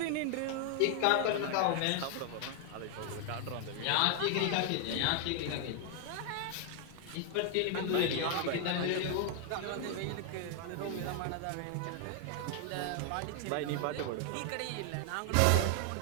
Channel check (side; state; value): both; different; correlation 0.00